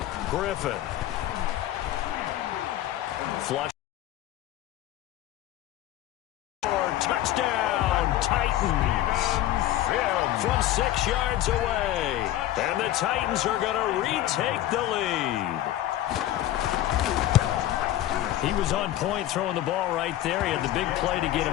Griffin. Flush. Touchdown, Titans. From 6 yards away. And the Titans are going to retake the lead. He was on point throwing the ball right there. He had the big play to get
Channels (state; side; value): quieter; right; 13.6 dB